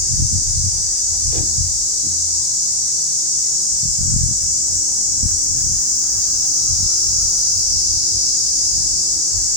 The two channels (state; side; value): late; left; 23 ms